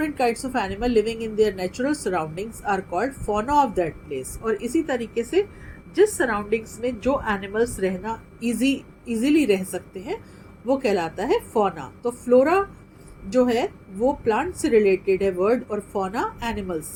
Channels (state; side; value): identical; both; correlation 1.00